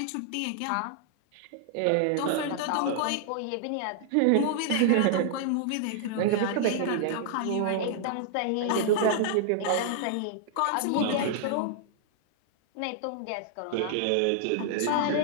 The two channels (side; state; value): both; different; correlation -0.01